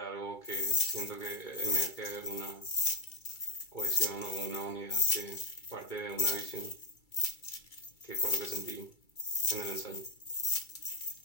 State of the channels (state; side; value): late; right; 2.3 ms